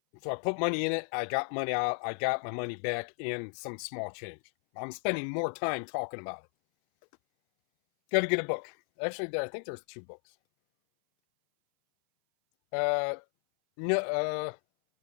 So I put money in it. I got money out. I got my money back and some small change. I'm spending more time talking about it. Got to get a book. Actually, I think there's 2 books. Uh, no,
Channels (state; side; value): silent; right; 56 dB below the other